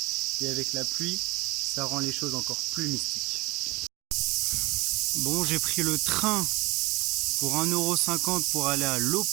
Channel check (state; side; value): quieter; left; 22.6 dB